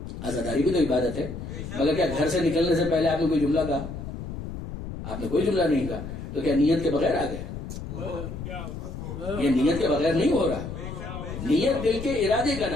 عزاداری بھی تو عبادت ہے، مگر کیا گھر سے نکلنے سے پہلے آپ نے کوئی جملہ کہا؟ آپ نے کوئی جملہ نہیں کہا، تو کیا نیت کے بغیر آ گئے؟ یہ نیت کے بغیر نہیں ہو رہا. نیت دل کے ارادے کا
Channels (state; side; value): noise; left; rumble, 8 dB below the sound